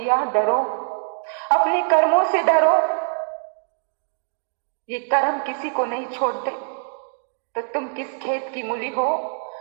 डरो, अपने कर्मों से डरो। ये कर्म किसी को नहीं छोड़ते। तो तुम किस खेत की मूली हो?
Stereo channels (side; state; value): left; silent; digital silence